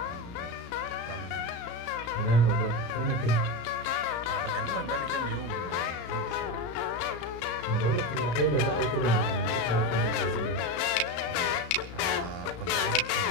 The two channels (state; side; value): late; right; 34 ms